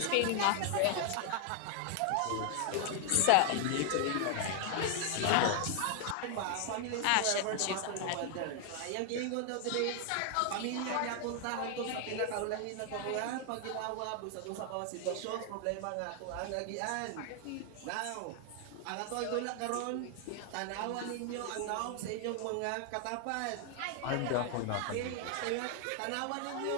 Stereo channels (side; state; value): both; different; correlation 0.00